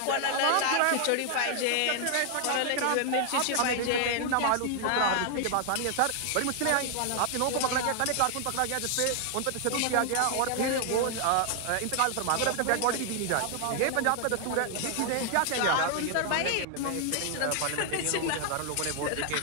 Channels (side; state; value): both; different; correlation 0.00